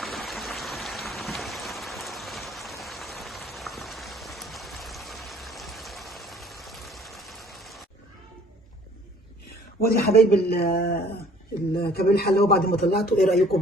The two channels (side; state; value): both; normal; correlation 0.55